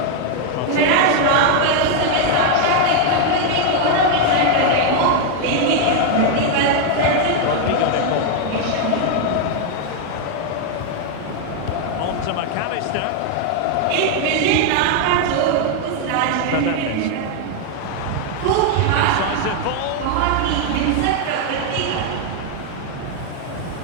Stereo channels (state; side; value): different; both; correlation 0.01